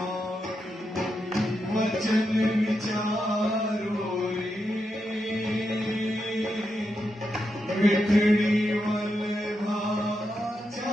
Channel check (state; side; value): normal; both; correlation 0.85